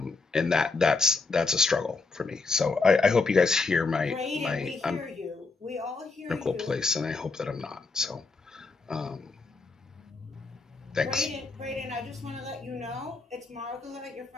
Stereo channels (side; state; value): right; quieter; 4.0 dB